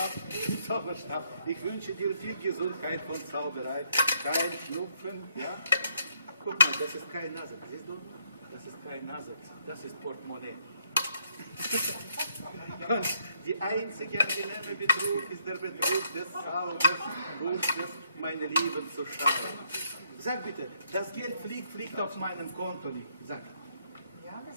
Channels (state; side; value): inverted; both; correlation -0.71